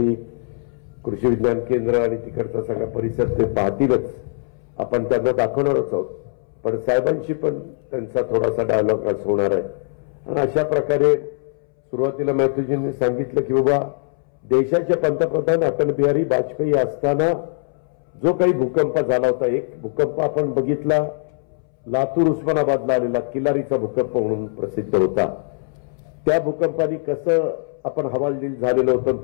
कृषी विज्ञान केंद्र आणि तिकडचा सगळा परिसर ते पाहतीलच, आपण त्यांना दाखवणारच आहोत. पण साहेबांशी पण त्यांचा थोडासा डायलॉग आज होणार आहे. आणि अशा प्रकारे सुरुवातीला मॅथ्यूजींनी सांगितलं की बाबा देशाचे पंतप्रधान अटल बिहारी वाजपेयी असताना जो काही भूकंप झाला होता, एक भूकंप आपण बघितला लातूर उस्मानाबादला आलेला किल्लारीचा भूकंप म्हणून प्रसिद्ध होता. त्या भूकंपाने कसं आपण हवालदिल झालेलं होतं,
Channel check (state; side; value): silent; right; 65 dB below the other